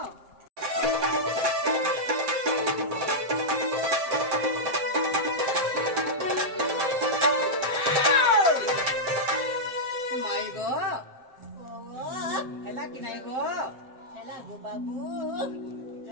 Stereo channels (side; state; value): left; late; 7.5 ms